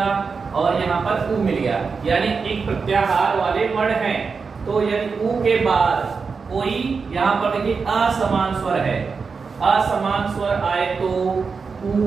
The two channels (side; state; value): left; quieter; 5.1 dB